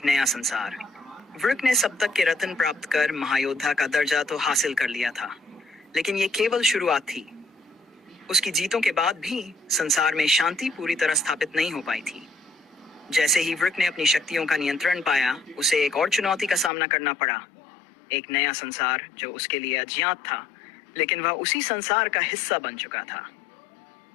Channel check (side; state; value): right; drops out; at 16.7 s